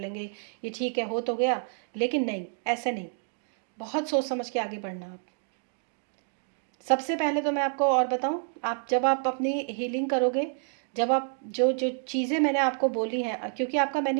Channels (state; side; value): silent; left; 59 dB below the other